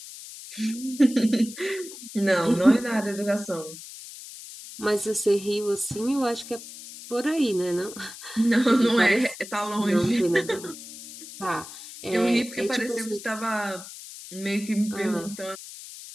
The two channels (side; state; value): left; noise; hiss, 14 dB below the sound